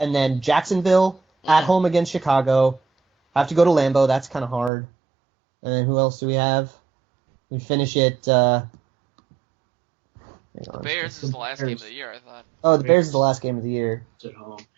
then Jacksonville at home against Chicago. Have to go to Lambeau. That's kind of hard. And then who else do we have? We finish it. The Bears is the last game of the year, I thought. Oh, the Bears is the last game of the year. It's at home.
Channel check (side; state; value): left; drops out; at 4.7 s